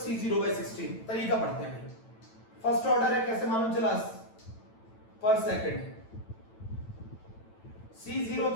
C0/16। तरीका पढ़ते हैं। फर्स्ट ऑर्डर है, कैसे मालूम चला? पर सेकंड। C0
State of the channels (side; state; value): right; late; 9.0 ms